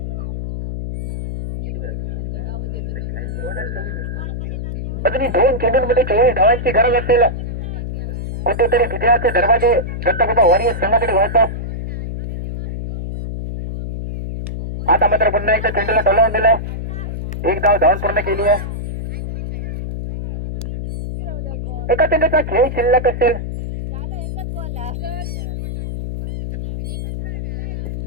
अजूनही 2 चेंडूंमध्ये 24 धावांची गरज असेल. कुठेतरी विजयाचे दरवाजे दत्तगोपा वॉरियर्स संघाकडे वळतात. आता मात्र पुन्हा एकदा चेंडूला टोलावून दिलाय. 1 धाव धावून पूर्ण केली आहे. एका चेंडूचा खेळ शिल्लक असेल.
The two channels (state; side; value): noise; left; hum, 5 dB below the sound